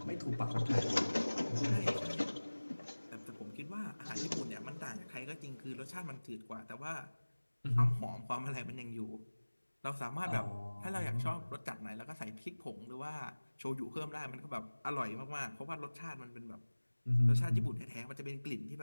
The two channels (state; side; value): inverted; both; correlation -1.00